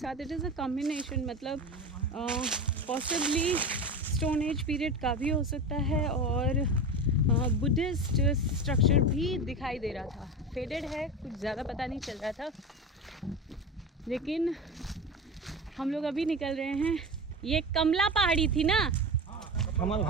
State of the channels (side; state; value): both; normal; correlation 0.26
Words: इट इज़ अ कॉम्बिनेशन, मतलब पॉसिबली स्टोन एज पीरियड का भी हो सकता है और बुद्धिस्ट स्ट्रक्चर भी दिखाई दे रहा था। फेडेड है, कुछ ज़्यादा पता नहीं चल रहा था, लेकिन हम लोग अभी निकल रहे हैं। ये कमला पहाड़ी थी ना? कमल